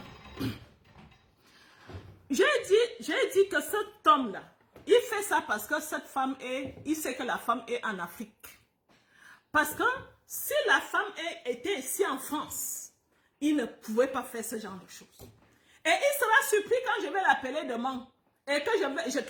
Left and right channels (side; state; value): both; identical; correlation 1.00